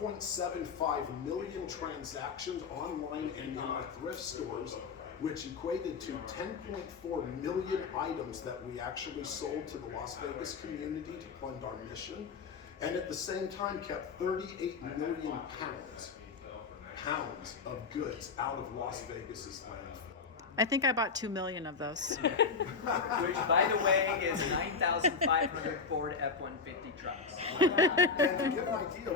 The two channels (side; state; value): right; quieter; 5.1 dB